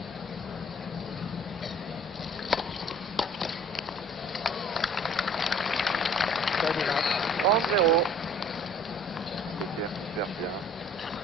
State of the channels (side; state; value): both; normal; correlation 0.52